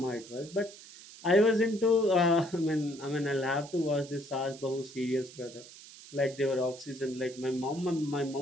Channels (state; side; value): noise; right; hiss, 18 dB below the sound